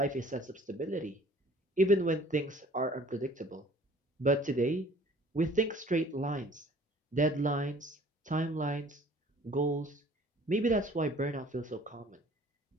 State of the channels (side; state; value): both; normal; correlation 0.52